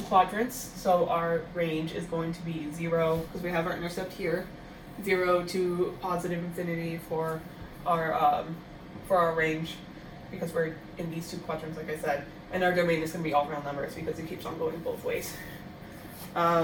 quadrants, so our range is going to be 0, because we have our intercept here, 0 to positive infinity for our range, because we're in these 2 quadrants, like I said. And our domain is going to be all round numbers, because it keeps on going both ways.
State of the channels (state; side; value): identical; both; correlation 1.00